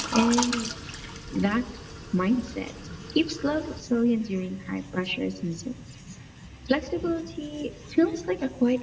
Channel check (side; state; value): both; identical; correlation 1.00